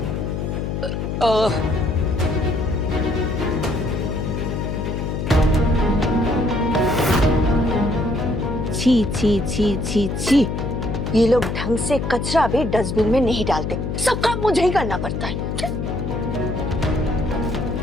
छी छी छी छी छी। ये लोग ढंग से कचरा भी डस्टबिन में नहीं डालते, सब काम मुझे ही करना पड़ता है।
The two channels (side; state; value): left; noise; hum, 3 dB below the sound